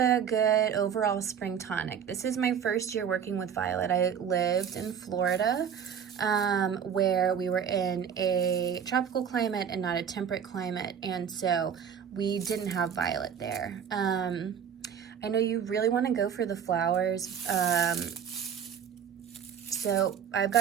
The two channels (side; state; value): left; quieter; 7.9 dB